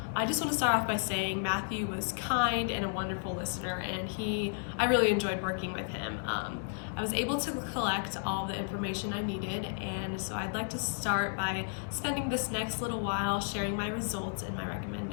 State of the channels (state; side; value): silent; right; digital silence